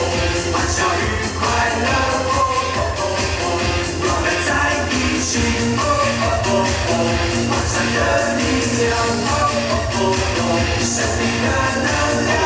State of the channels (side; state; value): both; identical; correlation 1.00